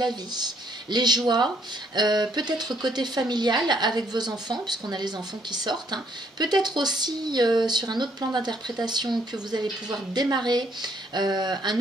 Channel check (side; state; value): both; normal; correlation 0.68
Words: vie, les joies, peut-être côté familial avec vos enfants, puisqu'on a les enfants qui sortent, peut-être aussi sur un autre plan d'interprétation que vous allez pouvoir démarrer un